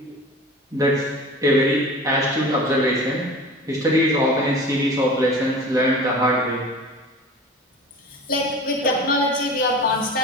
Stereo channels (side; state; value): both; normal; correlation 0.38